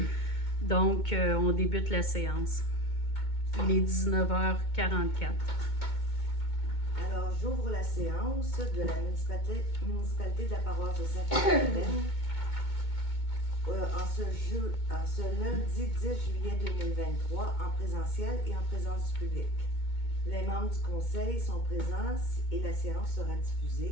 Donc, on débute la séance. Il est 19h44. Alors, j'ouvre la séance de la municipalité de la paroisse de Sainte-Madeleine en ce lundi 10 juillet 2023 en présentiel et en présence du public. Les membres du conseil sont présents et la séance sera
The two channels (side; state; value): right; late; 2.2 ms